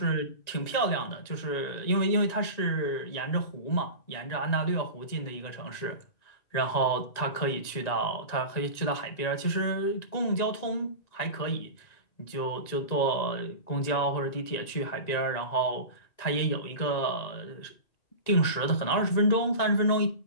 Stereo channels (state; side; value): late; right; 1.9 ms